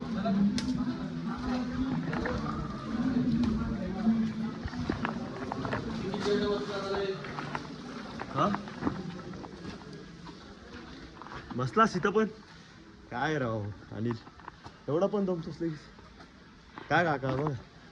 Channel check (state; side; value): identical; both; correlation 1.00